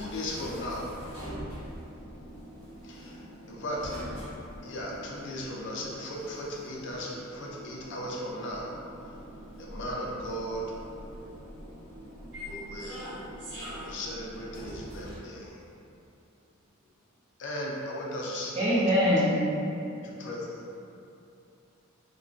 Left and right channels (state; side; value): normal; both; correlation 0.33